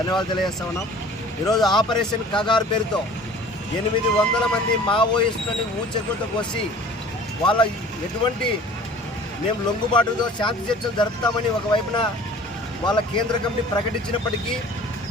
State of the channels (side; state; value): both; normal; correlation 0.46